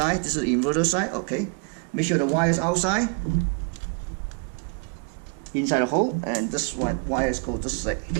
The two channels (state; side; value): quieter; left; 39.7 dB